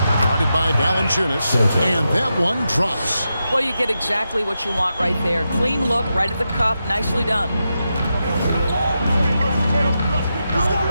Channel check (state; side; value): inverted; both; correlation -0.88